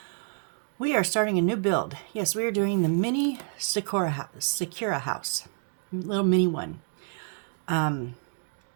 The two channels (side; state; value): left; silent; 59 dB below the other